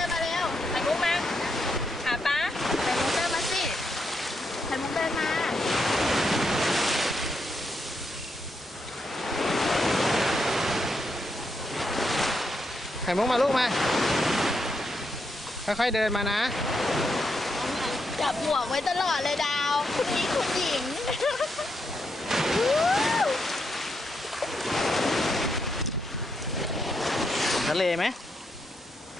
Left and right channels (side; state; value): both; normal; correlation 0.81